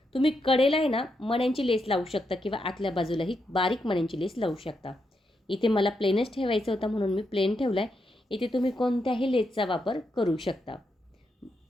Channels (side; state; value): both; normal; correlation 0.82